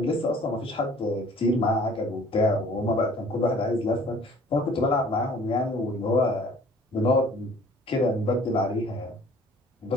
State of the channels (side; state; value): both; normal; correlation 0.52